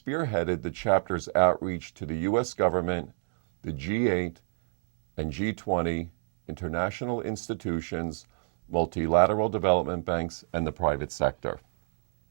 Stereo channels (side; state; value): left; silent; digital silence